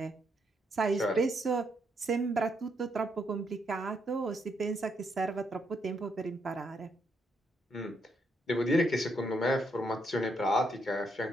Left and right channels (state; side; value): normal; both; correlation 0.76